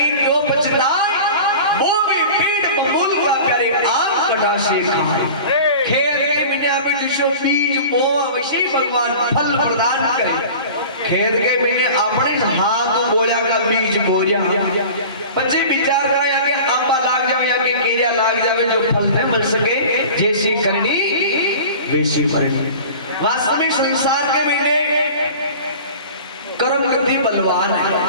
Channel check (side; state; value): both; inverted; correlation -0.39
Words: क्यों पछताए वो भी पेट बबूल का प्यारे आम कटा से खाए खेत के बिना में जिसो बीज बोआ वैसे भगवान फल प्रदान करे खेत के बिना अपने हाथ बोया का बीज बोया बच्चे विचार करा या के आंबा लाग जावे या के केरिया लाग जावे जो फल न मिल सके जैसी करनी वैसी भरनी। वास्तविक संसार के महीने कर्म गति बलवान है